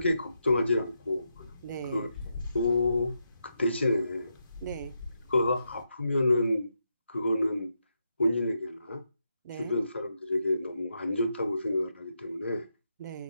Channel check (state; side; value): inverted; both; correlation -0.83